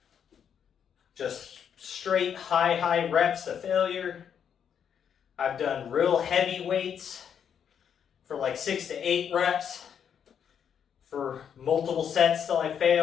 just straight high reps to failure. I've done real heavy weights for like 6 to 8 reps for multiple sets till I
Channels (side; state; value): right; quieter; 8.1 dB